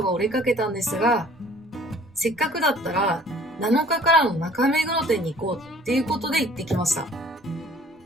が折れかけたんですが、せっかくだったら7日からの中目黒店に行こうっていうことで行ってきました。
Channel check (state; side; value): normal; both; correlation 0.53